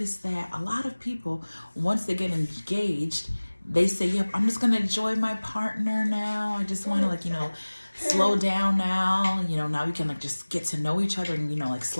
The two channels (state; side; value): inverted; both; correlation -1.00